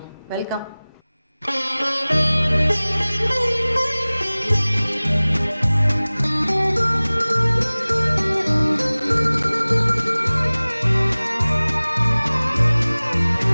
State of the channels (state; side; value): inverted; both; correlation -0.99